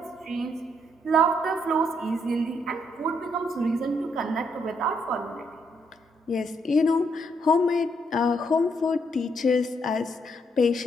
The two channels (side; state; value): both; normal; correlation 0.74